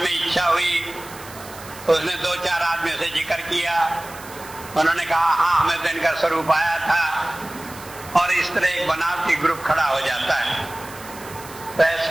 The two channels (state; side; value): noise; right; hiss, 17 dB below the sound